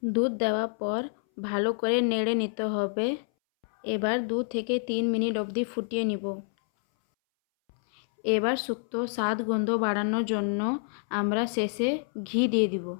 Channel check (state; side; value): silent; right; 59 dB below the other